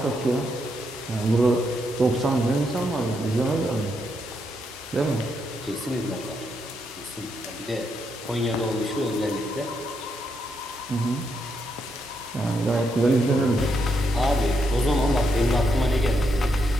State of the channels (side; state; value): both; normal; correlation 0.80